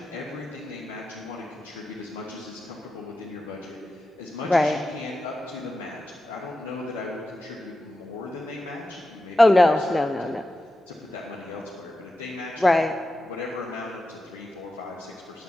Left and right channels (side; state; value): both; normal; correlation 0.91